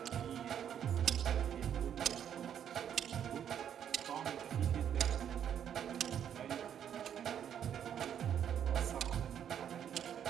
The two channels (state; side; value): quieter; left; 9.2 dB